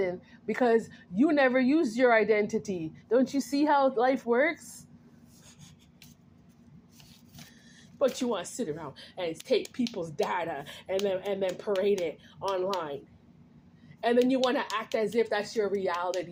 because you never used your identity. Don't you see how life works? But you want to sit around and take people's data and then parade it online. And then you want to act as if that's your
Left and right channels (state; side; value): identical; both; correlation 1.00